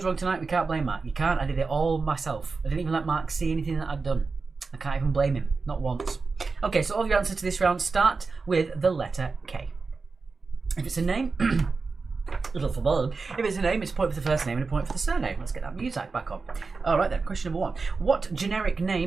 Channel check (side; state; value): left; quieter; 4.3 dB